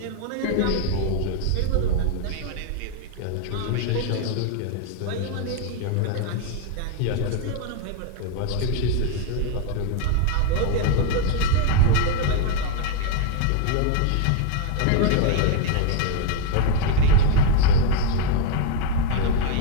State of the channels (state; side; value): different; both; correlation 0.01